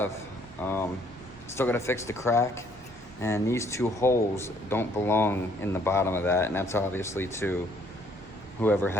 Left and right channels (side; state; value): both; normal; correlation 0.64